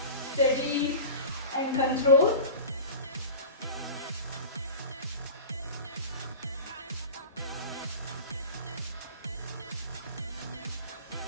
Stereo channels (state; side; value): inverted; both; correlation -0.34